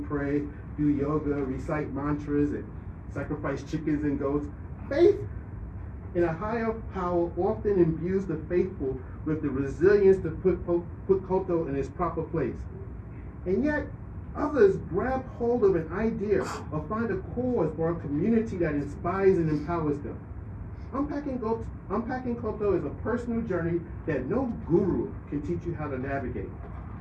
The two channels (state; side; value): identical; both; correlation 1.00